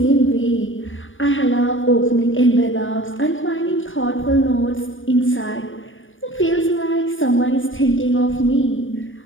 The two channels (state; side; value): late; right; 0.57 ms